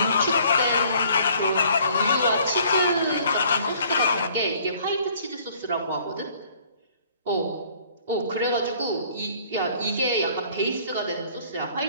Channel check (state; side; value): inverted; both; correlation -0.57